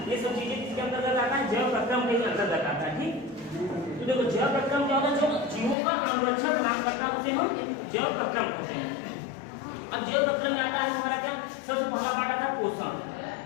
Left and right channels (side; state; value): right; drops out; at 5.8 s